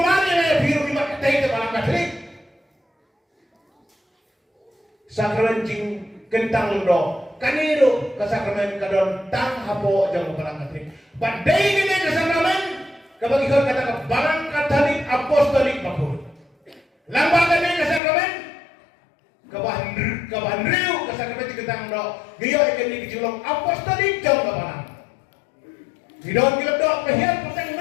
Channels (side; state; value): right; drops out; at 18.0 s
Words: biru di mata itu balang Katolik. Sakramen jing kentang londo. Kaniru kesakramen kadon tang hapo jang balang Katolik. Badai ini kesakramen kabagi kau kata balang Katolik apostolik bakul. Lambaga ini kesakramen kabahan riu kesakramen jing kentang londo. Giyo ikan ni kecilong apostolik jang balang. Hidon kilap dok kehian petang